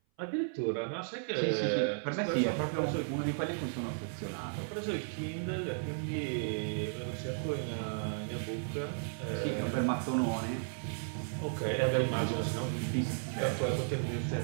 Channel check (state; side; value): silent; left; 55 dB below the other